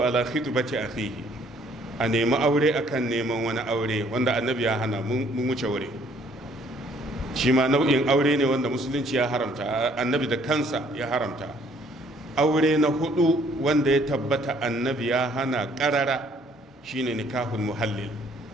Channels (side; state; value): both; normal; correlation 0.62